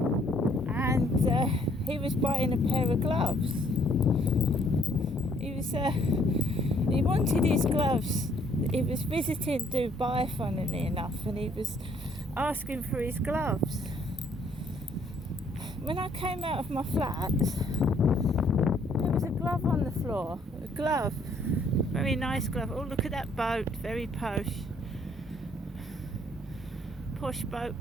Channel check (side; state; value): both; normal; correlation 0.64